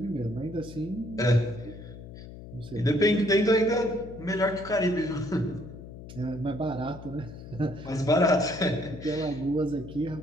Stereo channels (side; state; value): left; noise; hum, 14 dB below the sound